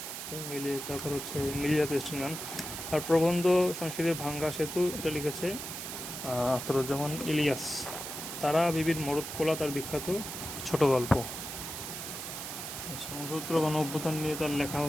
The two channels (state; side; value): noise; right; hiss, 7 dB below the sound